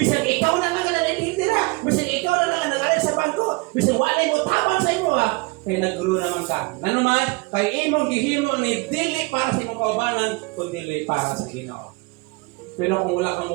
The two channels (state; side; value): quieter; left; 27.1 dB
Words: ikaw na lang ang nanitira, bisan ikaw na lang ang nag-aral sa bangko, bisan wala mo tabang sa imo ha. Kaya nag-grow naman ka. Nanuman, kay imong gihimo ni dili para sa imong kaubanan, kundi para sa Ginoo. Pero kung wala kang